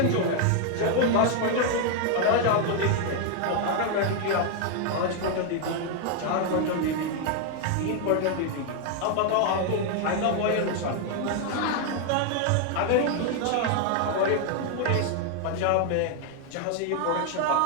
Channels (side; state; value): both; different; correlation 0.00